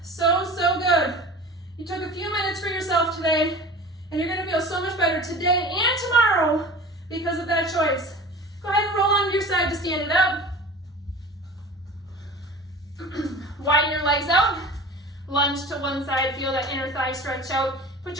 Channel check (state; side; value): normal; both; correlation 0.38